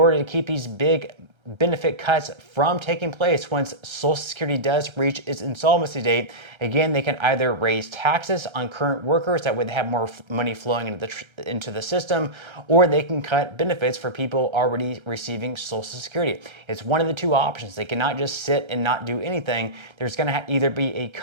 to keep these big benefit cuts from taking place once Social Security does reach its insolvency date. Again, they can either raise taxes on current workers that would have more money flowing into the system, or they can cut benefits for people already receiving Social Security. It's one of the two options. They cannot just sit and not do anything. There's going to either be a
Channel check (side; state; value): left; late; 1.3 ms